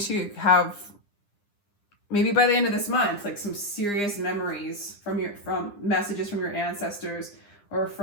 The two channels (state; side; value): late; right; 9.9 ms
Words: have, maybe by the end of this month, like some serious memories from messages from your ancestors, or